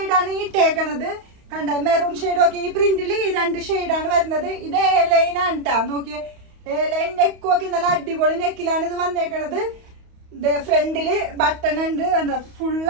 ഇട്ടേക്കണത്. കണ്ട, മെറൂൺ ഷെയ്ഡ് ഒക്കെ ഈ പ്രിന്റില് ഈ 2 ഷെയ്ഡാണ് വരുന്നത്. ഇത് A-ലൈൻ ആണ് ട്ടാ. നോക്കിയേ, A-ലൈൻ നെക്കും ഒക്കെ നല്ല അടിപൊളി നെക്കിലാണ് ഇത് വന്നേക്കണത്. ഫ്രണ്ടില് ബട്ടൺ ഉണ്ട്, എന്താ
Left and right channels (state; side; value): late; left; 31 ms